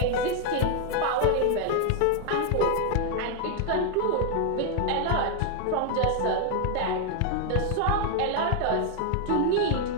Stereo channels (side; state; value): both; different; correlation 0.00